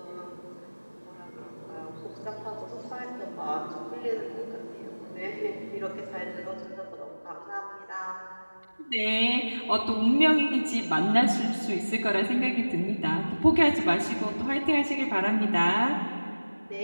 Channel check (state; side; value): inverted; both; correlation -1.00